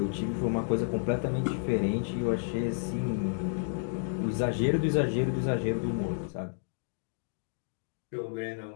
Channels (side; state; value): right; silent; digital silence